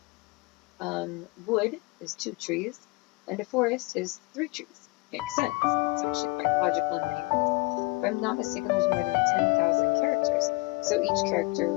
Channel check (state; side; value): quieter; right; 25.5 dB